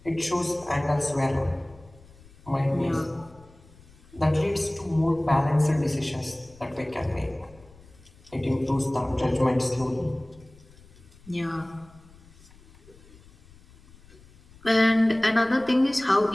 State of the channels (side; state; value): left; noise; rumble, 24 dB below the sound